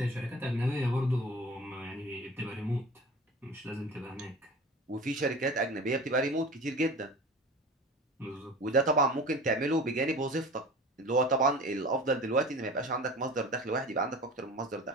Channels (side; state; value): both; normal; correlation 0.37